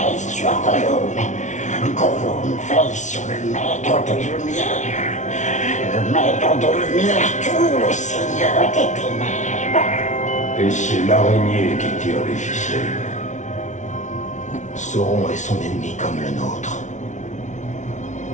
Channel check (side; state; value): right; late; 0.36 ms